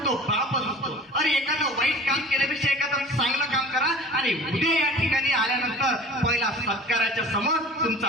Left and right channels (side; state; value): both; normal; correlation 0.42